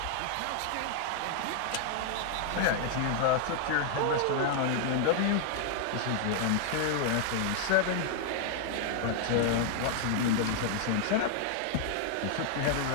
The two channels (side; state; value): both; different; correlation -0.01